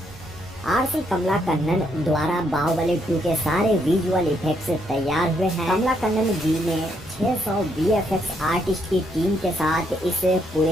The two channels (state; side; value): normal; both; correlation 0.74